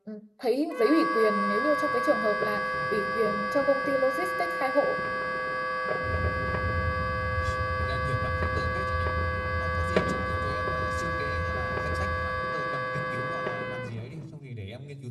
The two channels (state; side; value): identical; both; correlation 1.00